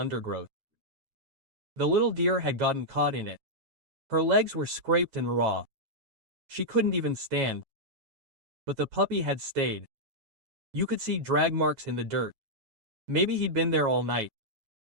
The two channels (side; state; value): left; late; 9.3 ms